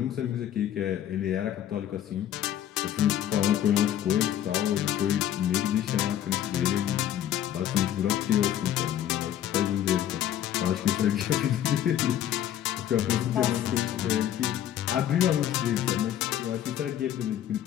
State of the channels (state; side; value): quieter; right; 11.1 dB